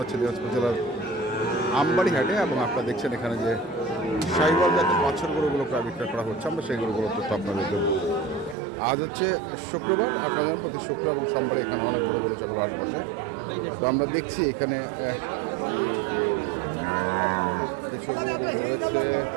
দিনাজপুর জেলার আমবাড়ি হাটে। এবং আপনারা দেখছেন এখানে যে শাহিওয়াল জাতের বাছুর গরুগুলো প্রায় বিক্রয় করা হচ্ছে, আমরা সেই গরুগুলো তথ্য আপনাদের দেবো। আজ হচ্ছে শুক্রবার, আপনাদের প্রতি শুক্র এবং সোমবারে এখানে অনেক বড় গরু ছাগল হাট বসে। তো আমরা দেখছি এখানে কিছু গরু রয়েছে।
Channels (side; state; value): left; drops out; at 8.6 s